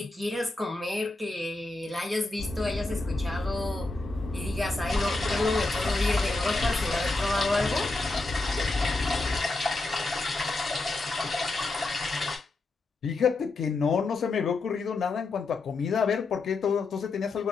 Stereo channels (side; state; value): right; quieter; 3.3 dB